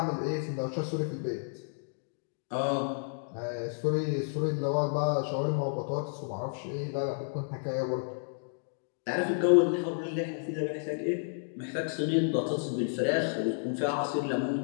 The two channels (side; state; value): right; silent; digital silence